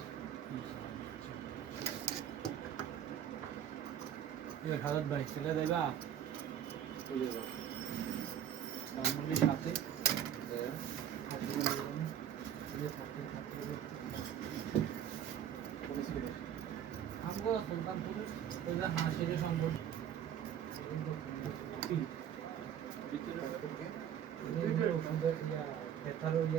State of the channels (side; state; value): left; quieter; 9.8 dB